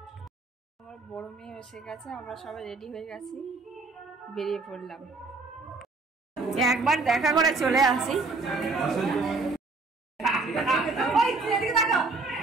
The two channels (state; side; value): quieter; left; 3.7 dB